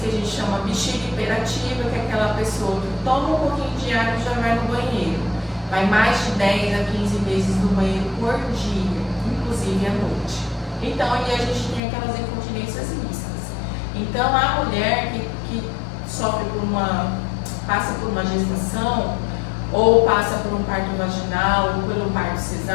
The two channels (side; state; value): right; drops out; at 11.8 s